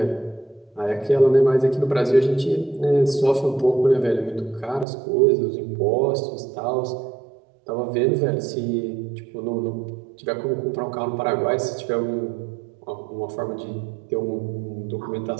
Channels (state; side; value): drops out; left; at 4.9 s